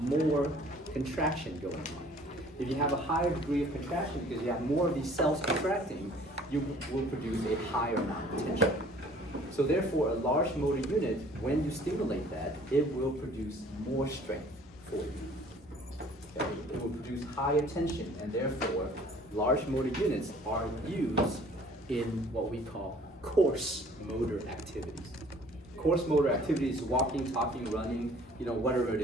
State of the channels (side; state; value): both; normal; correlation 0.53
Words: more contraction going on. If you have a higher degree of contraction because you have more of these cells contracting, you will produce a higher amount of tension. So therefore, a large motor unit, when you stimulate that, it will produce more strength for you. Okay? It will produce higher tension, and therefore, large motor units are used in what we call coarse motor activities. Coarse motor activities, walking, talking, running, whatever it